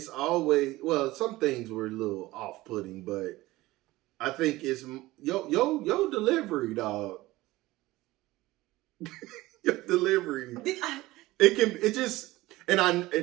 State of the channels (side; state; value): left; quieter; 18.5 dB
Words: always some things were a little off-putting, but I think it's your delivery, dog. Your delivery. This